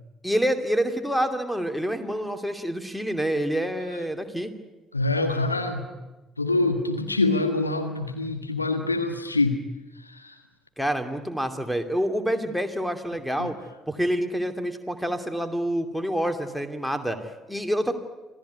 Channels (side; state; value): both; normal; correlation 0.31